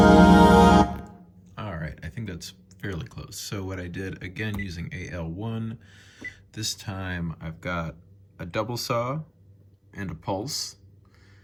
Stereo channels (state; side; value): identical; both; correlation 1.00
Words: Fairly close. So what I did, again using AL-1, this time I've got a double saw and a pulse.